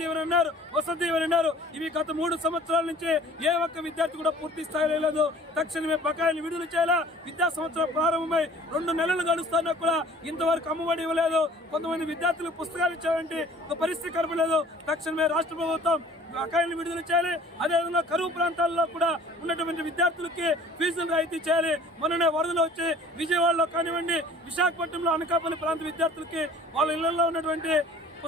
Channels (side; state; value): both; normal; correlation 0.50